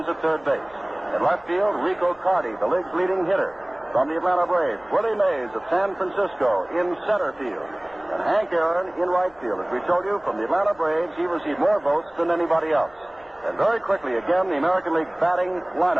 is at third base. In left field, Rico Carty, the league's leading hitter. From the Atlanta Braves, Willie Mays of San Francisco in center field. And Hank Aaron in right field. As we told you, from the Atlanta Braves, he received more votes than anybody else. And very quickly, again, the American League batting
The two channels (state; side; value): noise; left; rumble, 28 dB below the sound